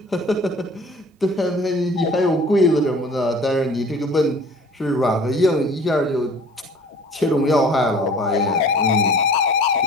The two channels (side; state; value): both; normal; correlation 0.47